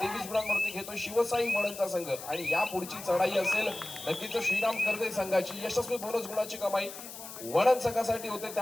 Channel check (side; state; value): left; noise; hiss, 12 dB below the sound